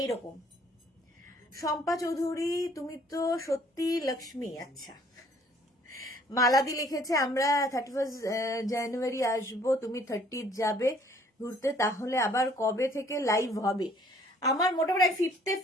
শম্পা চৌধুরী তুমি তো সত্যি লক্ষ্মী। আচ্ছা মালাদি লিখেছে আমরা 31 জানুয়ারি আসবো, তুমি 30 যাবে ঘুরতে, তাহলে আবার কবে থেকে লাইভ হবে? আমার মোটামুটি 5th-এ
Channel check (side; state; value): both; normal; correlation 0.59